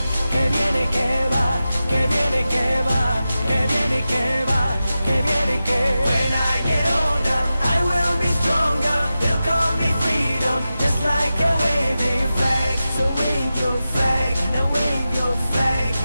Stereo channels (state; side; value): inverted; both; correlation -0.93